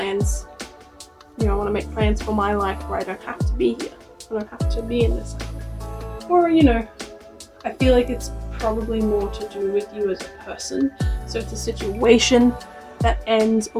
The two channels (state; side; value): identical; both; correlation 1.00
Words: you know, I want to make plans for my life where I don't have to be here. I don't have to be in this cycle. Or, you know, I feel like it's probably more to do with you as a person. So it's a situation that ends